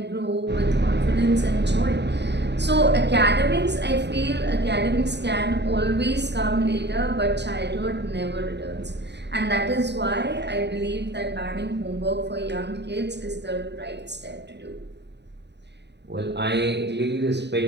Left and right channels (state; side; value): late; left; 0.50 ms